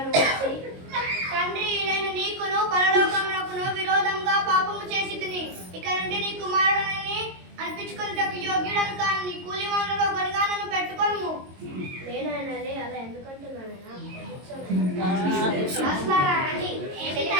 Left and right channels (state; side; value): late; left; 22 ms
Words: నువ్వు వచ్చి? తండ్రి, నేను నీకును పరలోకమునకును విరోధంగా పాపము చేసి తిని ఇక నుండి నీ కుమారుడని అనిపించుకున్నటకు యోగ్యుడను కాను. నీ కూలి వాళ్ళలో ఒకరిగా నన్ను పెట్టుకోను. నేనైనాలే అలా ఎందుకంటున్నానైనా? రండి,